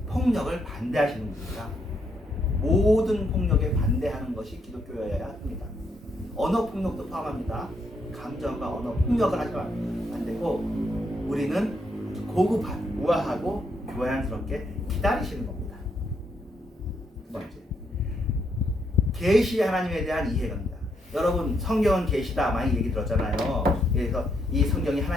폭력을 반대하시는 분입니다. 모든 폭력에 반대하는 것이 기독교여야 합니다. 언어 폭력도 포함합니다. 감정과 언어 폭력을 하시면 안 되고 우리는 고급한, 우아하고 교양스럽게 기다리시는 겁니다. 두 번째, 계시 하나님에 대한 이해입니다. 여러분 성경은 계시다 많이 얘기 들었잖아요. 그래서 이 성경이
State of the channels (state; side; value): normal; both; correlation 0.76